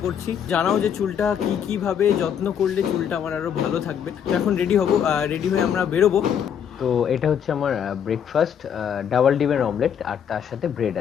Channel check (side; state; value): right; quieter; 8.4 dB